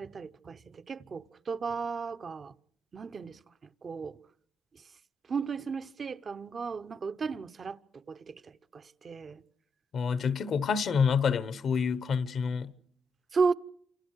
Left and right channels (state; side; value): normal; both; correlation 0.80